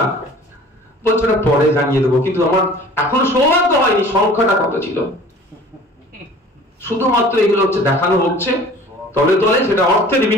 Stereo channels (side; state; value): both; normal; correlation 0.46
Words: বলছে ওটা পরে জানিয়ে দেবো। কিন্তু আমার এখনো সৌভাগ্য হয়নি সংখ্যাটা কত ছিল। শুধুমাত্র এগুলো হচ্ছে দেখানো হচ্ছে, তলে তলে সেটা অর্থের